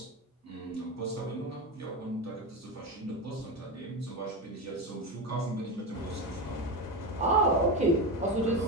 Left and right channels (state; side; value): normal; both; correlation 0.18